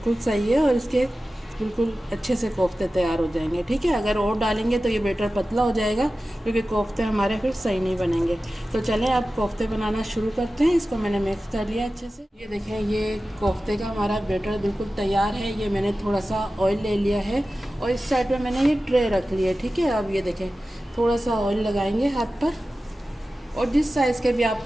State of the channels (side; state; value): both; normal; correlation 0.95